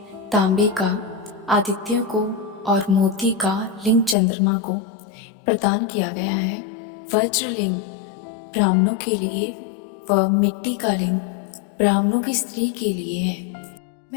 तांबे का आदित्य को और मोती का लिंग चंद्रमा को प्रदान किया गया है। वज्रलिंग ब्राह्मणों के लिए व मिट्टी का लिंग ब्राह्मणों की स्त्री के लिए है।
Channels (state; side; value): drops out; right; at 4.2 s